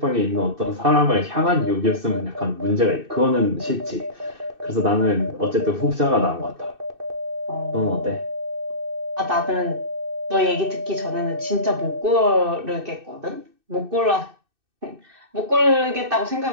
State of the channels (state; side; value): late; left; 2.6 ms